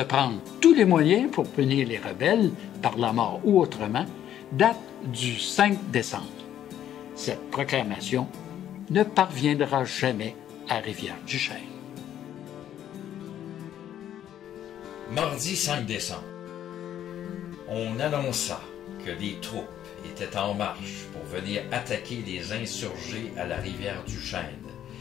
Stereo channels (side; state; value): right; quieter; 10.9 dB